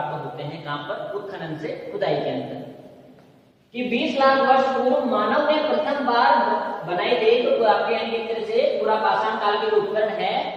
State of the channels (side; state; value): both; identical; correlation 1.00